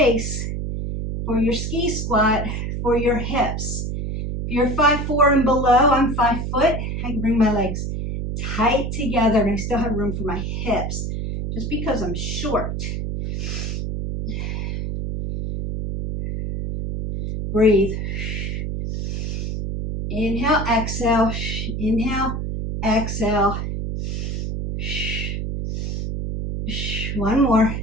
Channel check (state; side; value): noise; right; hum, 3 dB below the sound